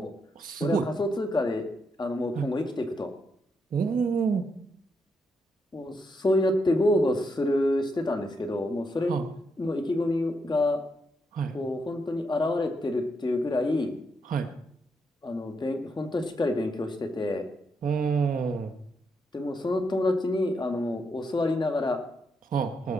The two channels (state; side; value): normal; both; correlation 0.80